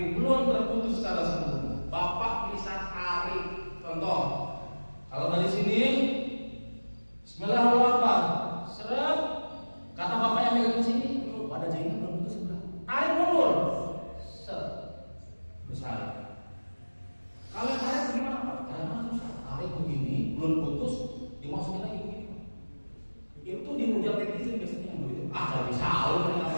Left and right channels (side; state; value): both; inverted; correlation -1.00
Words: belum terputus secara sempurna, Bapak bisa tarik. Contoh, kalau dari sini Bismillahirrahmanirrahim, seret, kata Bapak yang megang sini, wadah jahitnya belum putus sebelah, tarik mundur, seret, besar. Kalau tarik gimana Pak? Karena susah, tarik begini, belum putus, dimasukin lagi begini. Itu di rujak netizen biasanya yang begitu. Ah, nggak bisa, lu